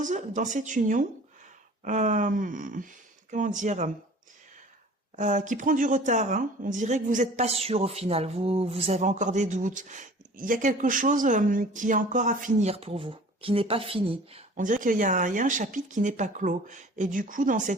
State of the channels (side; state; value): both; normal; correlation 0.46